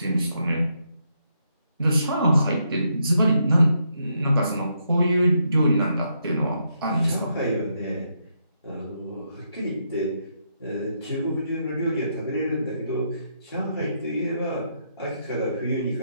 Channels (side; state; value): both; inverted; correlation -0.78